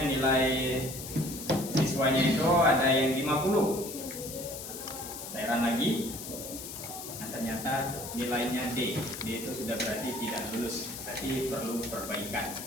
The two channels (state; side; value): noise; left; hiss, 9 dB below the sound